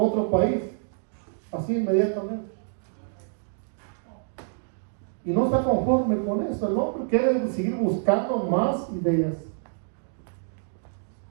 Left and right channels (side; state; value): left; silent; digital silence